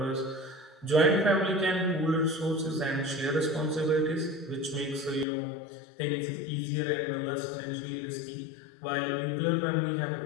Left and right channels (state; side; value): drops out; right; at 5.2 s